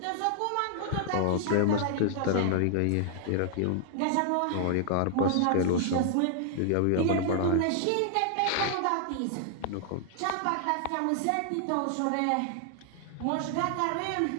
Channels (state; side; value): different; both; correlation 0.00